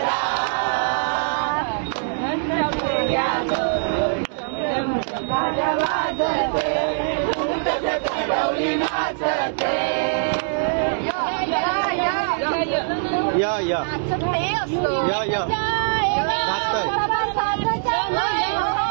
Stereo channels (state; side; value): silent; left; digital silence